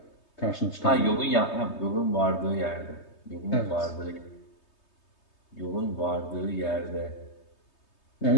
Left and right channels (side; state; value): right; late; 3.2 ms